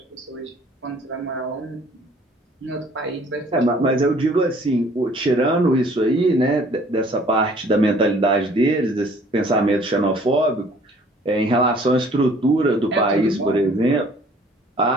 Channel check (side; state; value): both; normal; correlation 0.55